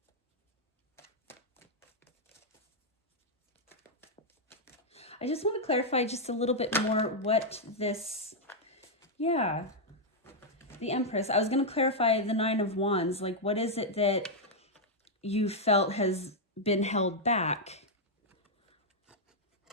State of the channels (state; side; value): normal; both; correlation -0.03